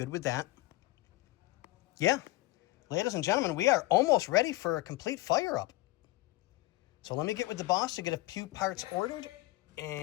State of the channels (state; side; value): quieter; right; 19.0 dB